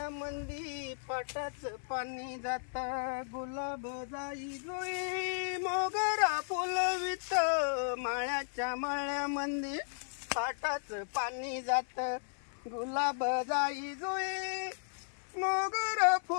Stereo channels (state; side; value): silent; right; 54 dB below the other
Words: पाटाच पाणी जात गुलाब जाई जोई मोगरा फुलवित माळ्याच्या माळ्यामंदी पाटाच पाणी जात गुलाब जाई जोई मोगरा